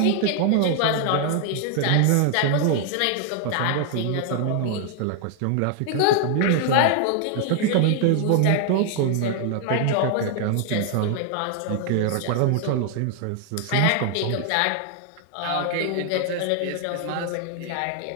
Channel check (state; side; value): different; both; correlation 0.00